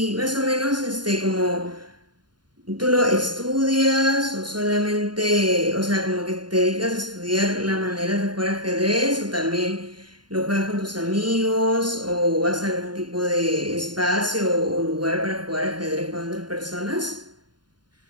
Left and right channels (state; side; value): late; left; 0.71 ms